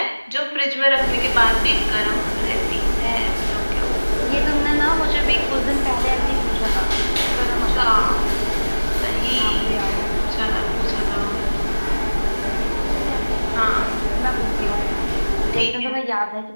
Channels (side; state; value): both; inverted; correlation -1.00